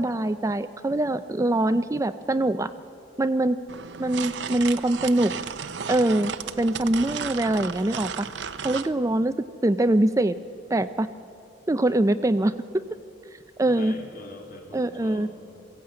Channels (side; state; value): both; normal; correlation 0.80